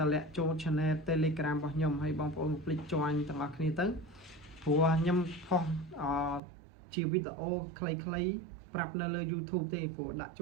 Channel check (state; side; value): drops out; left; at 6.4 s